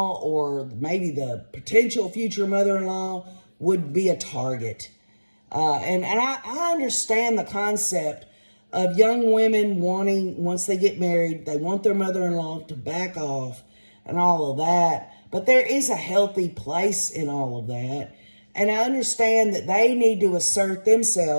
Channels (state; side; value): inverted; both; correlation -1.00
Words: or maybe the potential future mother-in-law would be a target. And I understand the concept of young women wanting, once they get married, they want their mother-in-law to back off and all of that. But there is a healthy place in all of that. And I understand that they need to assert